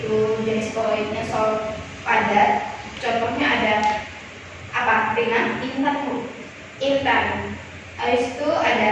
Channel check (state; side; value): identical; both; correlation 1.00